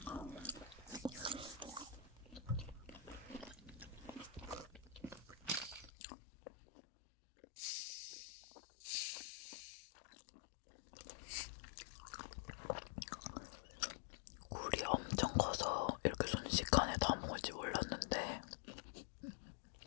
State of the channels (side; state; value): right; drops out; at 5.9 s